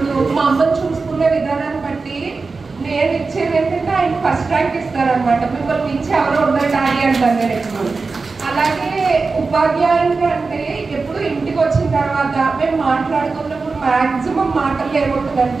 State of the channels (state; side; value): quieter; left; 4.2 dB